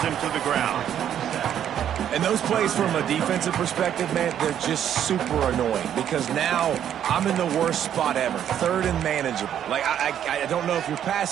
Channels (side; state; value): left; quieter; 9.9 dB